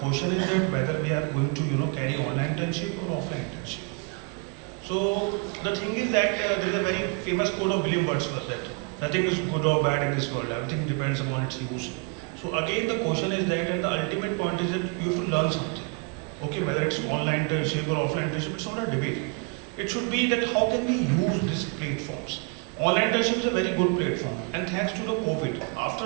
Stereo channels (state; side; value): quieter; left; 31.9 dB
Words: question is that whether we are going to carry online internship or offline internship. So the thing is that there is a very famous quote of William Wordsworth that nothing is good or bad in this world. Everything depends upon its use. So again, the question is that, and the ultimate point is that you have to learn something. Okay, whether it's online internship or offline internship, it's not a debate. It should be that how can we use these platforms. Online internship is a very good platform, and thanks to the COVID, after